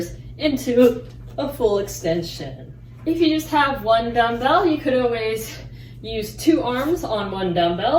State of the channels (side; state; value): both; identical; correlation 1.00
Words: into a full extension. If you just have one dumbbell, you could always use 2 arms on one